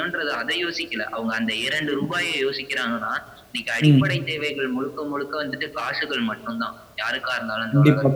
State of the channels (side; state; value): both; identical; correlation 1.00